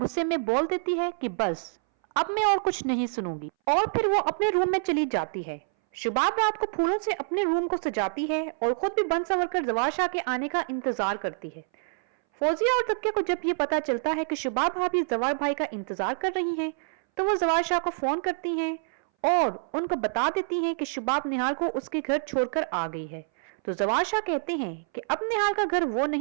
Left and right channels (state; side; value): silent; left; 60 dB below the other